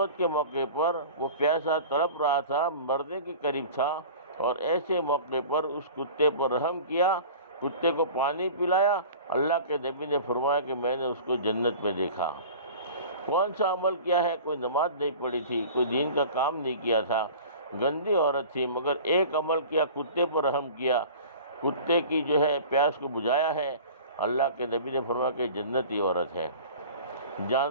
کے موقع پر وہ پیاسا تڑپ رہا تھا، مرنے کے قریب تھا، اور ایسے موقع پر اس کتے پر رحم کیا، کتے کو پانی پلایا۔ اللہ کے نبی نے فرمایا کہ میں نے اس کو جنت میں دیکھا۔ کون سا عمل کیا ہے؟ کوئی نماز نہیں پڑھی تھی، کوئی دین کا کام نہیں کیا تھا، گندی عورت تھی، مگر ایک عمل کیا، کتے پر رحم کیا، کتے کی جو ہے پیاس کو بجھایا ہے۔ اللہ کے نبی نے فرمایا کہ جنتی عورت ہے۔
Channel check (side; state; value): both; inverted; correlation -0.40